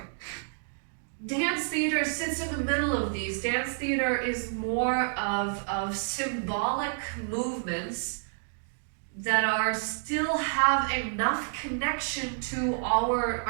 Dance theater sits in the middle of these. Dance theater is more of symbolic movements that still have enough connection to our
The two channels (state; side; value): silent; left; digital silence